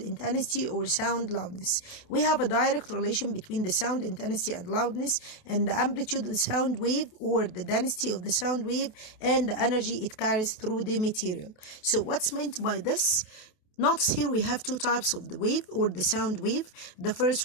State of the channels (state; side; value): late; right; 28 ms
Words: or sound loudness. We have a direct relation between the sound intensity and loudness and the amplitude of the sound wave or the density of the sound wave and the energy it carries through the material. So what's meant by this? Notice here we have two types of the wave or the sound wave. The